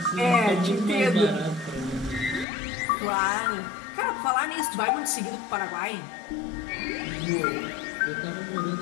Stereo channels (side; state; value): right; drops out; at 2.5 s